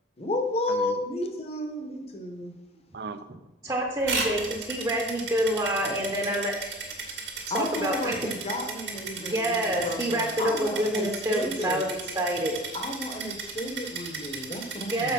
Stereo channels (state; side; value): normal; both; correlation 0.40